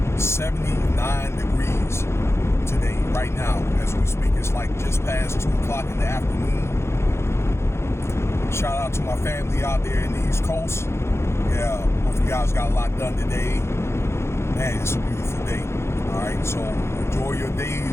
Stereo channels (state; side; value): late; right; 0.13 ms